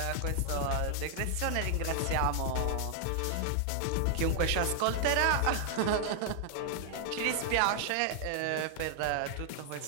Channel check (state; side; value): different; both; correlation 0.00